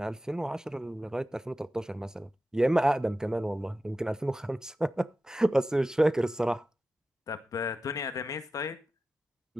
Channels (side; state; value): both; normal; correlation 0.93